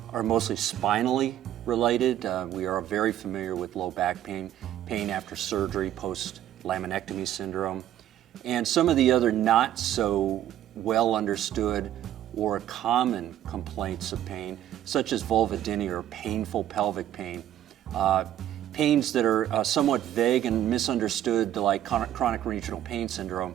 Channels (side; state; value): left; quieter; 11.8 dB